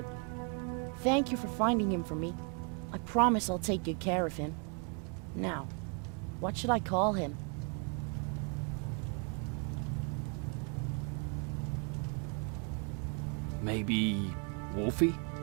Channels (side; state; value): left; quieter; 36.4 dB